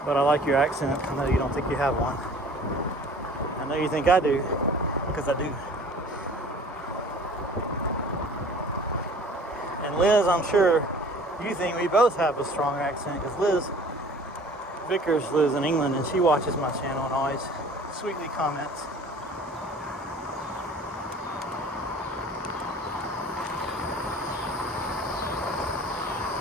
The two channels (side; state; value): both; normal; correlation 0.48